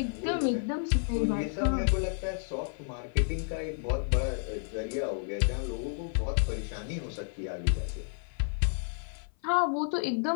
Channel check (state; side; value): silent; right; 56 dB below the other